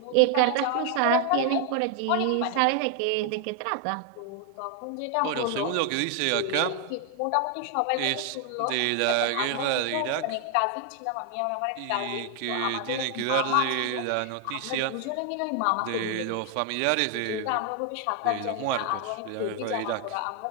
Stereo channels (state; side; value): different; both; correlation 0.00